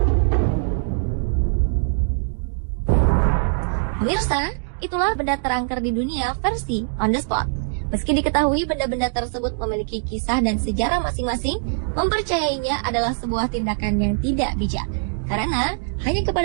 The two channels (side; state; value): left; silent; digital silence